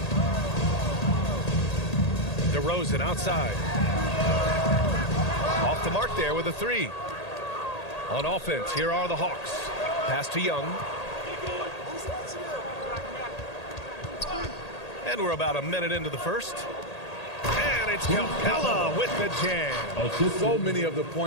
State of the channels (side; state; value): right; late; 1.8 ms